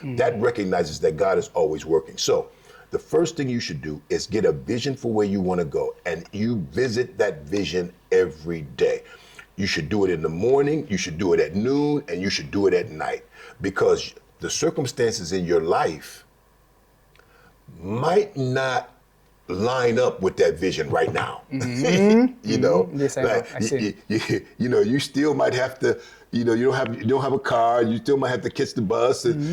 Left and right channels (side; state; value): both; identical; correlation 1.00